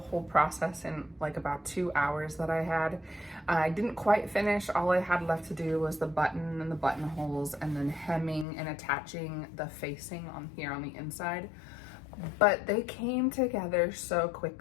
process in like about 2 hours that I had. I didn't quite finish. All I had left to do was the button and the buttonholes, and then hemming and attaching the facing on here on the inside. But they came together so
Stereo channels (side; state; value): right; drops out; at 8.5 s